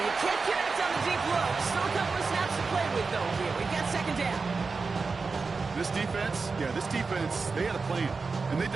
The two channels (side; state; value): left; quieter; 4.4 dB